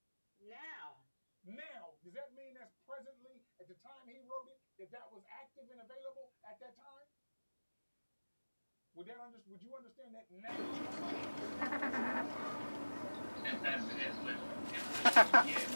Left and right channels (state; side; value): inverted; both; correlation -1.00